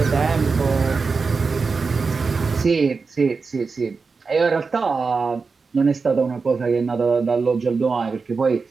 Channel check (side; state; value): left; quieter; 4.7 dB